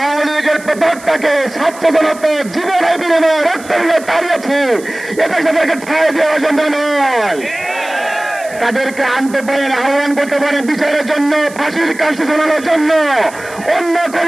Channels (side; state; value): right; noise; hiss, 19 dB below the sound